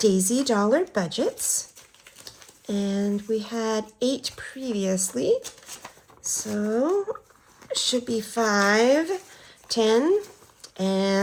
Dollar Budgets. And we had 8 previously. So it should be 5, 10,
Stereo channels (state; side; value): identical; both; correlation 1.00